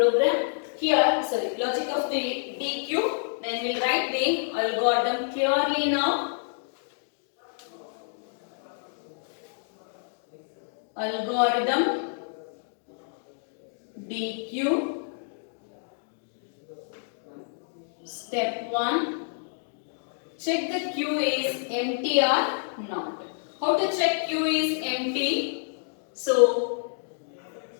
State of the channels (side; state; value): right; silent; digital silence